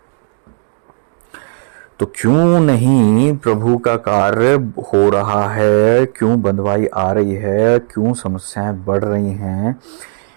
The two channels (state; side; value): silent; left; digital silence